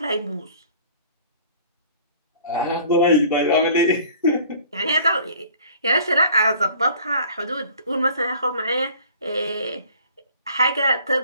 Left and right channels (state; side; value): inverted; both; correlation -0.51